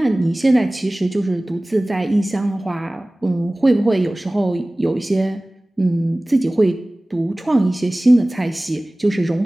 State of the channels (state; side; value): normal; both; correlation 0.98